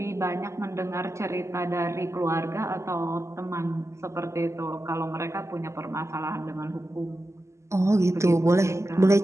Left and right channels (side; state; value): left; late; 0.14 ms